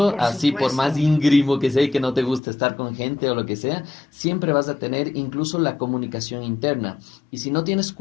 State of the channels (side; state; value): right; drops out; at 2.4 s